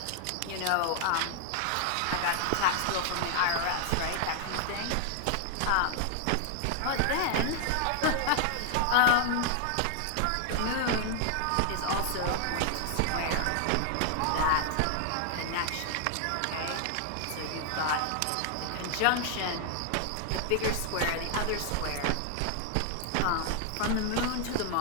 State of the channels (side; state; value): both; different; correlation -0.01